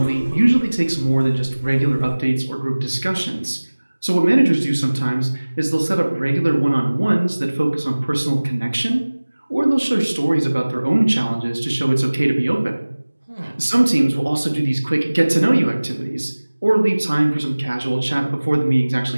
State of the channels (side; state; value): both; inverted; correlation -1.00